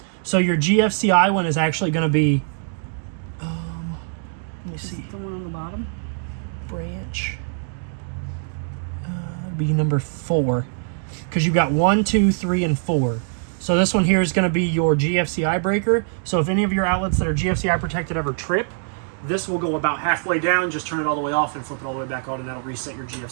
So your GFCI one is actually going to be let me see, the one on the bottom, branch be number 4. Because you've got 1, 2, 3, and 4. So this one here is going to be your GFCI breaker. So if any of your outlets that are GFCI protected ever trip, this will go about halfway down, just turn it all the way off and flip it all the way back on, and that'll reset your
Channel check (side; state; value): left; silent; 64 dB below the other